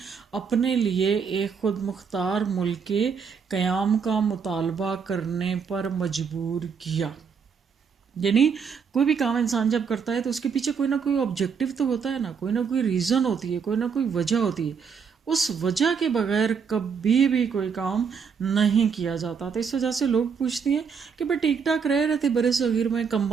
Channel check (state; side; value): quieter; left; 6.3 dB